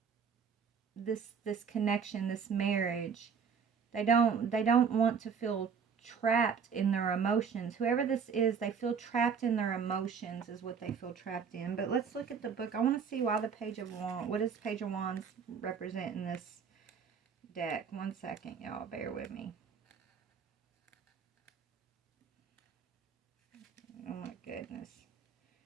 this connection, this marriage. They don't want to feel trapped in their emotions. Whoever this is, they feel trapped in their emotions is what they feel trapped in. But let's look at the book. I want to see why the Page of Wands, what does Page of Wands represent in this deck? 1 second, y'all, bear with me. Oh my goodness.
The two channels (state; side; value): quieter; left; 6.5 dB